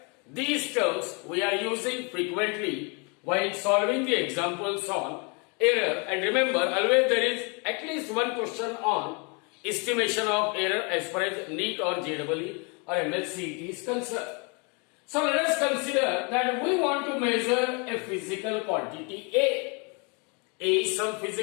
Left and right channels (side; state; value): right; quieter; 32.8 dB